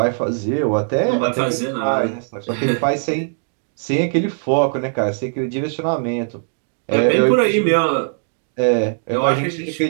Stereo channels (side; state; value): left; silent; digital silence